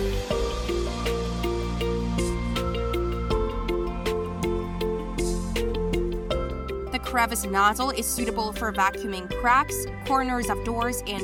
The Crevice Nozzle is suitable for vacuuming cracks, corners of doors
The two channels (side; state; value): both; identical; correlation 1.00